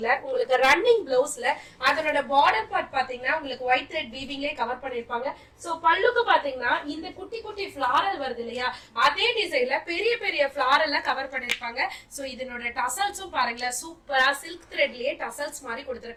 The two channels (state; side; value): identical; both; correlation 1.00